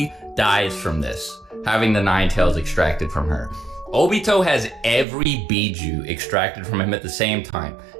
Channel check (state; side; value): drops out; left; at 5.1 s